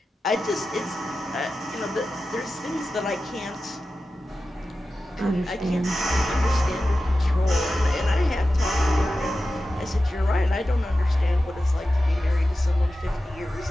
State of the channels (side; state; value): both; normal; correlation 0.93